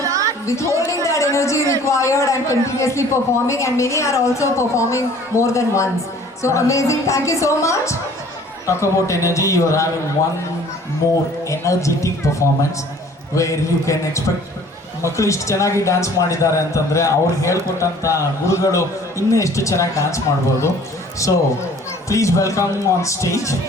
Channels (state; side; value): normal; both; correlation 0.52